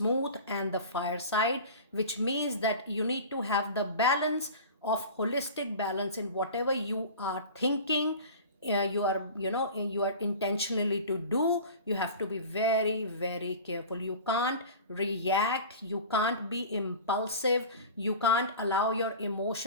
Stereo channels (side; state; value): both; inverted; correlation -0.36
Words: and the fire side, which means that you need to have the balance of holistic balance in whatever you are thinking. You are intentionally to do. You have to be very, very careful. You can't react, you can't be impulsive, you can't allow your